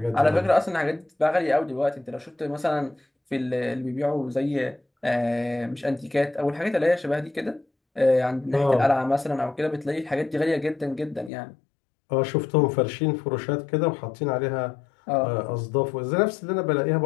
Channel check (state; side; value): drops out; right; at 11.3 s